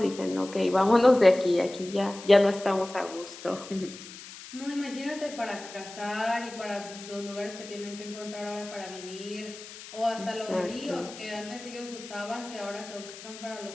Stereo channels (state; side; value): noise; left; hiss, 15 dB below the sound